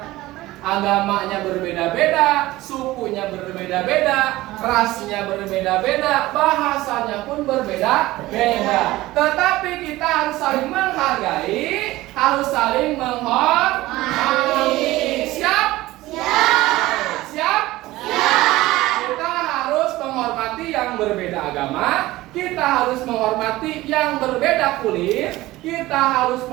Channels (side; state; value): left; quieter; 17.8 dB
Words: agamanya berbeda-beda, sukunya berbeda-beda, rasnya berbeda-beda, bahasanya pun berbeda-beda. Tetapi kita harus saling menghargai, harus saling menghormati. Siap? Siap. Siap? Kita harus menghormati yang berbeda agama, kita harus menghormati yang berbeda kulit, kita harus